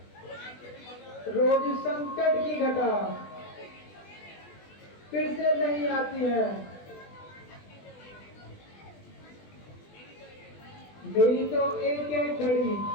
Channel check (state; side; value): late; right; 20 ms